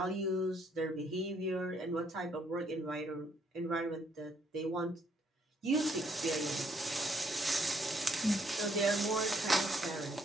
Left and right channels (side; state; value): both; normal; correlation 0.70